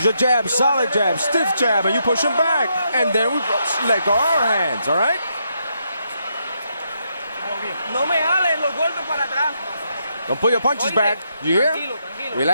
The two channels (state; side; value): inverted; both; correlation -0.79